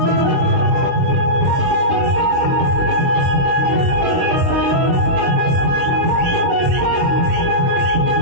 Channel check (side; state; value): left; late; 23 ms